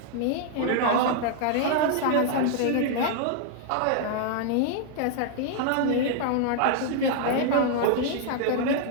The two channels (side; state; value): both; different; correlation 0.00